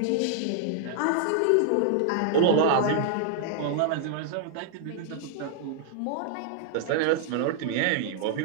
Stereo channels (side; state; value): both; different; correlation -0.01